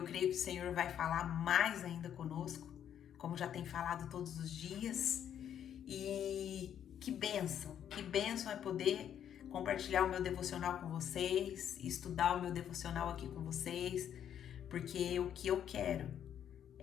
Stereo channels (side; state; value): right; quieter; 9.6 dB